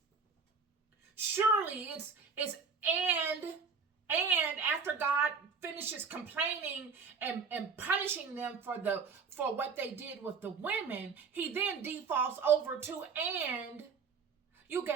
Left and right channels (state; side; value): quieter; left; 5.4 dB